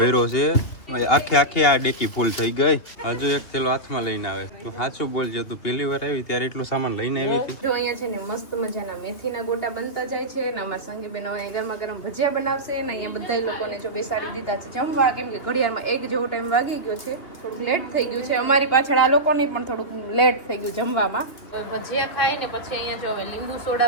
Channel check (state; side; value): late; right; 2.6 ms